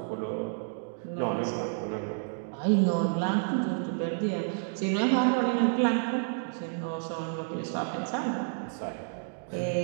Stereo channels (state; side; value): silent; left; digital silence